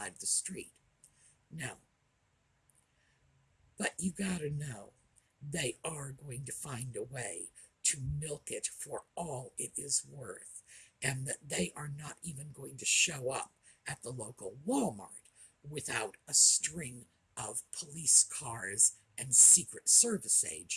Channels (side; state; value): both; identical; correlation 1.00